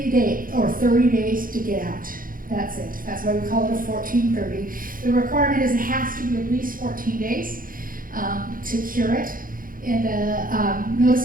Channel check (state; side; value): late; left; 0.40 ms